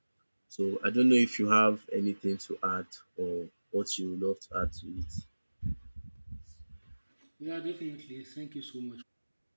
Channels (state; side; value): inverted; both; correlation -1.00